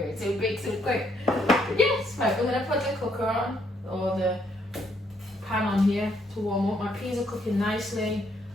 so big so quick. But yes, right, we're going to put the cooker on, or the pan on here to warm up. My peas are cooking nicely.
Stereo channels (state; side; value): normal; both; correlation 0.71